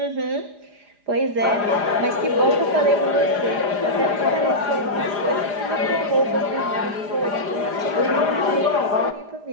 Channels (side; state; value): left; late; 4.9 ms